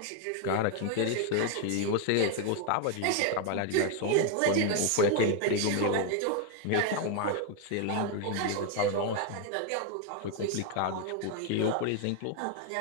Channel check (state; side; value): different; both; correlation 0.00